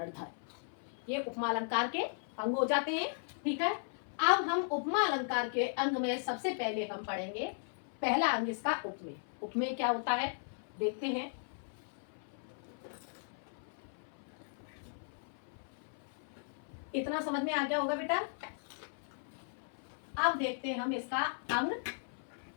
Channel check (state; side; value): silent; right; 53 dB below the other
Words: धर्म। ये उपमा अलंकार के अंग हो जाते हैं। ठीक है, अब हम उपमा अलंकार के अंग में सबसे पहले हम पढ़ेंगे पहला अंग इसका उपमेय। उपमेय क्या होता है देखते हैं। इतना समझ में आ गया होगा बेटा। अब देखते हैं हम इसका अंग।